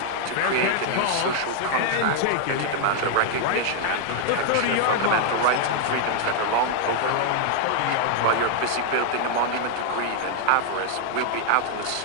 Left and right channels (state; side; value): different; both; correlation 0.00